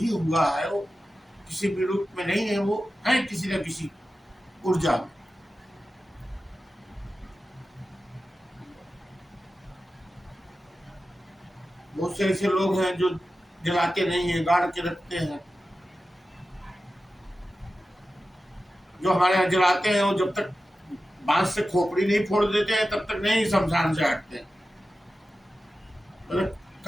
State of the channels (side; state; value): both; normal; correlation 0.93